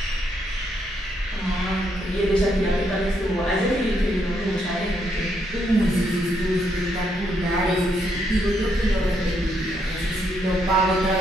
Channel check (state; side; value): normal; both; correlation 0.76